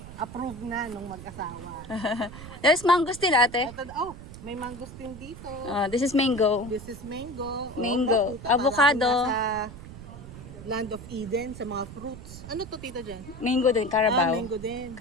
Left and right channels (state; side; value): noise; right; rumble, 14 dB below the sound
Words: Approved na nung mag-asawa. There's mangosteen, ate. May mangosteen dito. This is mango. This is mango. Mango. Nakita Avocado. natin nasa Land of Eden sa mga fruits. Ano to, tita Jen? Mango din, Carabao. Mango din.